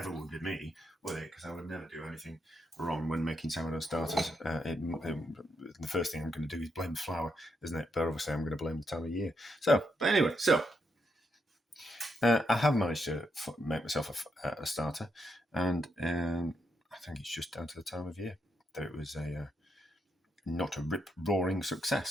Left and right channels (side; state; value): both; normal; correlation 0.80